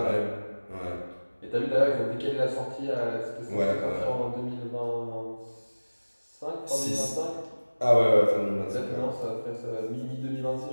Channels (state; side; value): inverted; both; correlation -1.00